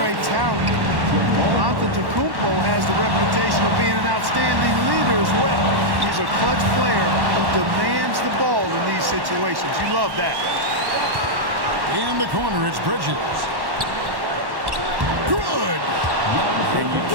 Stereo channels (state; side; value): late; left; 1.1 ms